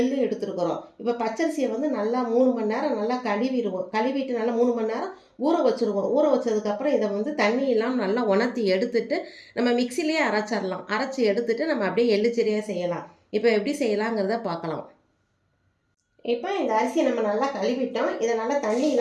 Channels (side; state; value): both; identical; correlation 1.00